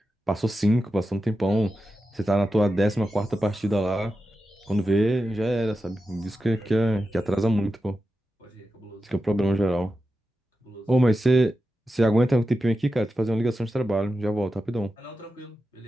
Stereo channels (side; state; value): both; normal; correlation 0.91